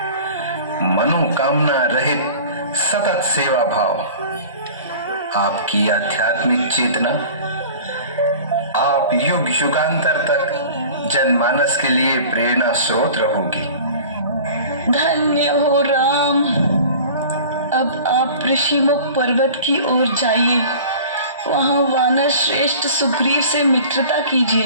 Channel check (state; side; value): inverted; both; correlation -0.42